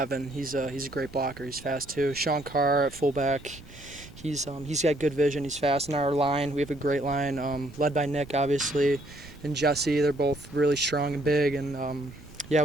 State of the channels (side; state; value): right; noise; rumble, 19 dB below the sound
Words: he's a great blocker. He's fast too. Sean Carr at fullback, he's got good vision. He's fast. In our line, we have a great line, led by Nick, obviously, and Jesse. They're both really strong and big. And